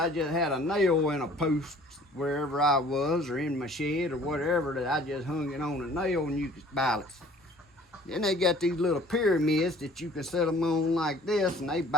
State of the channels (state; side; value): normal; both; correlation 0.52